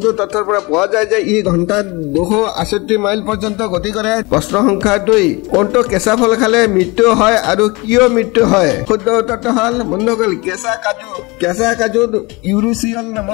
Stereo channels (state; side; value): quieter; right; 25.4 dB